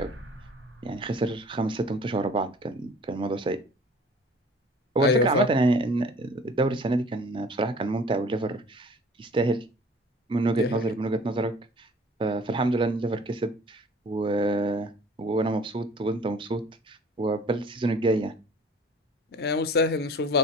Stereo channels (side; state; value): both; normal; correlation 0.50